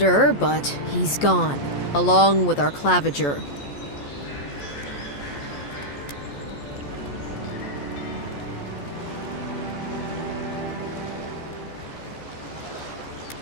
but he's gone, along with our claviger.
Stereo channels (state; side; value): late; right; 14 ms